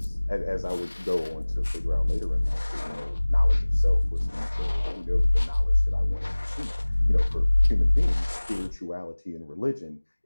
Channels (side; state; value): both; inverted; correlation -1.00